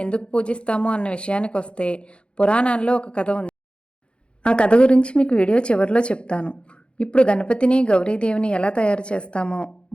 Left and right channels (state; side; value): late; right; 0.056 ms